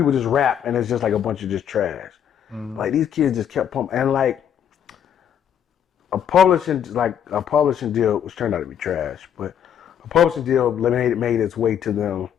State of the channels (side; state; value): right; quieter; 9.1 dB